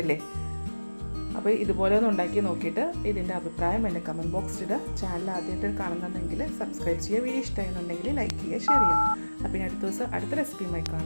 അപ്പോൾ ഇതുപോലെ ഒന്ന് ഉണ്ടാക്കി നോക്കിയിട്ട് ഇതിൻ്റെ അഭിപ്രായം എൻ്റെ കമൻറ്റ് ബോക്സിൽ ഇടുക. ചാനൽ ആദ്യമായിട്ട് കാണുന്നുണ്ടെങ്കിൽ സബ്സ്ക്രൈബ് ചെയ്യുക. വീഡിയോ ഇഷ്ടമായിരുന്നുണ്ടെങ്കിൽ ലൈക്ക് ചെയ്യുക, ഷെയർ ചെയ്യുക. അപ്പോൾ ഇനി അടുത്ത ദിവസം അടുത്ത റെസിപ്പിയുമായി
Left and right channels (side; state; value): both; inverted; correlation -1.00